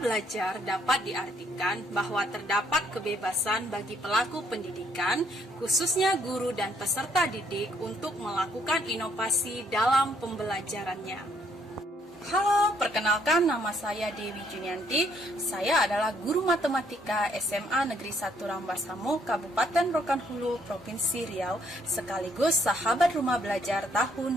dapat diartikan bahwa terdapat kebebasan bagi pelaku pendidikan, khususnya guru dan peserta didik untuk melakukan inovasi dalam pembelajarannya. Halo, perkenalkan nama saya Dewi Junianti. Saya adalah guru matematika SMA Negeri 1 Rambasamo, Kabupaten Rokan Hulu, Provinsi Riau, sekaligus sahabat rumah belajar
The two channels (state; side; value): normal; both; correlation 0.68